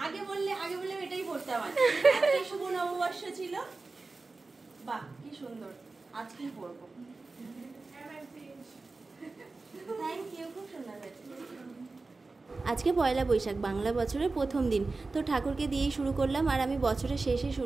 আগে বললে এটাই পড়তাম। আজকে শুভ নববর্ষ ছিল। বাহ কি সুন্দর, আজকেই পড়বো। থ্যাংক ইউ, খুব সুন্দর হয়েছে। আজকে পয়লা বৈশাখ, বাংলা বছরের প্রথম দিন। তো ঠাকুরকে দিয়েই শুরু করলাম, আর আমি বছরের শেষে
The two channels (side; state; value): left; quieter; 3.7 dB